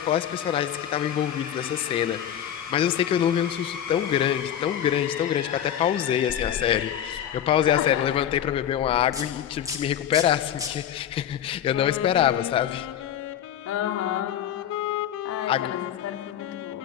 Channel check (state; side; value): quieter; right; 10.2 dB